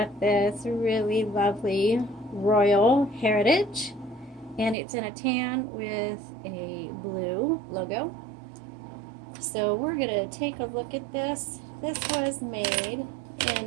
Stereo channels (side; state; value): left; drops out; at 4.8 s